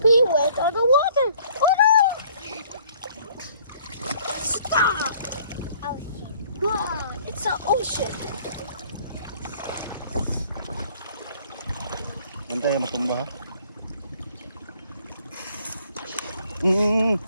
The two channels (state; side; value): inverted; both; correlation -0.58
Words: went on the water. Oh no! Stop! Ocean. Wow, it's an ocean. Antay matumba ha.